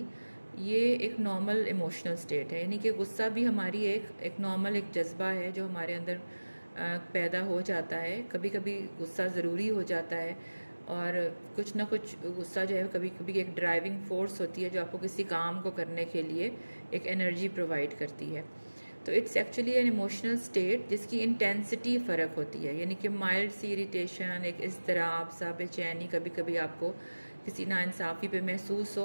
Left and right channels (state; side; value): inverted; both; correlation -1.00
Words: ये एक नॉर्मल इमोशनल स्टेट है। यानी कि गुस्सा भी हमारी एक नॉर्मल एक जज्बा है जो हमारे अंदर पैदा हो जाता है। कभी कभी गुस्सा ज़रूरी हो जाता है और कुछ ना कुछ गुस्सा जो है कभी कभी एक ड्राइविंग फोर्स होती है जो आपको किसी काम को करने के लिए एक एनर्जी प्रोवाइड करती है। तो it's actually an emotional state जिसकी इंटेंसिटी फ़र्क होती है। यानी कि माइल्ड सी इरिटेशन, एक इज़्तिराब सा, बेचैनी कभी कभी आपको किसी नाइंसाफ़ी पे महसूस हो,